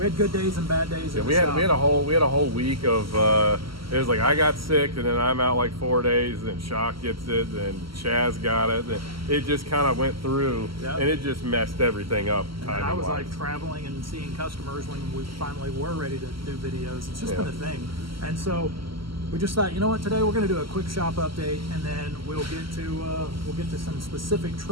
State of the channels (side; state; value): left; late; 0.74 ms